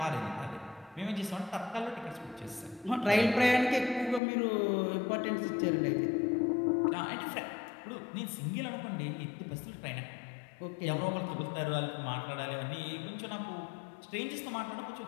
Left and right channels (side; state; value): right; drops out; at 4.2 s